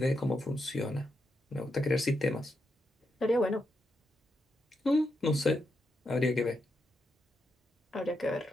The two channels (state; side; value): normal; both; correlation 0.83